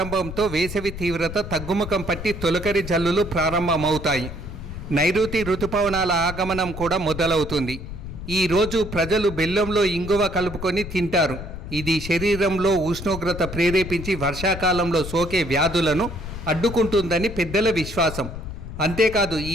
వేసవి తీవ్రత తగ్గుముఖం పట్టి తొలకరి జల్లులు ప్రారంభమవుతాయి. నైరుతి ఋతుపవనాల ఆగమనం కూడా మొదలవుతుంది. ఈరోజు ప్రజలు బెల్లంలో ఇంగువ కలుపుకొని తింటారు. ఇది శరీరంలో ఉష్ణోగ్రత ప్రేరేపించి వర్షాకాలంలో సోకే వ్యాధులను అడ్డుకుంటుందని పెద్దల విశ్వాసం. అంతేకాదు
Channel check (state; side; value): noise; left; rumble, 9 dB below the sound